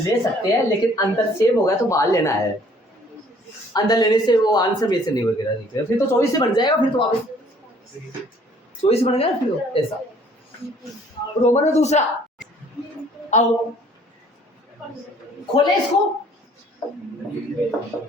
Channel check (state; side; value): normal; both; correlation 0.58